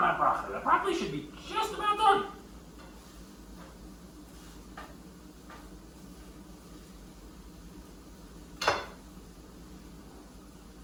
that broccoli? The broccoli should be just about done.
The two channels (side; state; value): both; identical; correlation 1.00